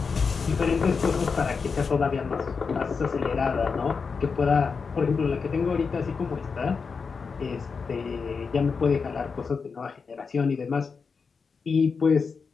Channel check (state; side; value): quieter; right; 5.2 dB